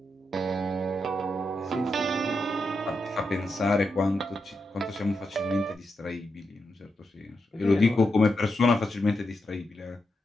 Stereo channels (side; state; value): both; normal; correlation 0.85